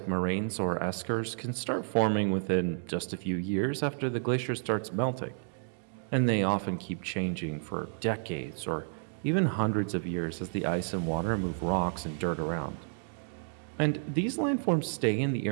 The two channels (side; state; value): left; silent; digital silence